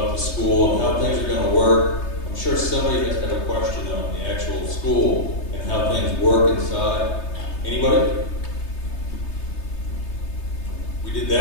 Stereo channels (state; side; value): late; right; 3.3 ms